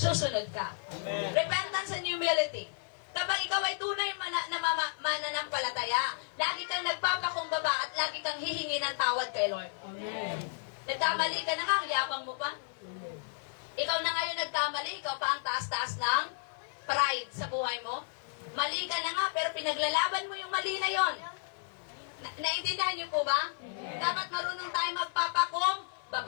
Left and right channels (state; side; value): silent; right; digital silence